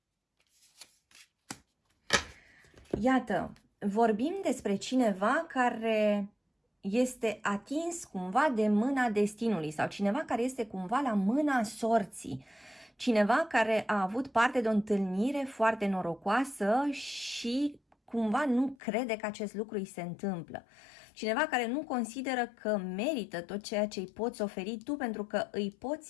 Iată, vorbim despre cineva care este atins cumva de mâna destinului sau cineva care este cumva la mâna sorții. Cineva care a avut parte de o întâlnire foarte norocoasă și cumva nu crede că acest lucru îi se întâmplă. Cineva care nu consideră că merită tot ceea ce îi poți oferi tu pentru că îi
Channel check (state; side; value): drops out; right; at 18.8 s